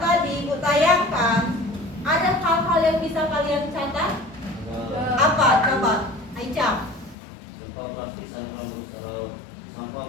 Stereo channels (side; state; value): right; drops out; at 7.2 s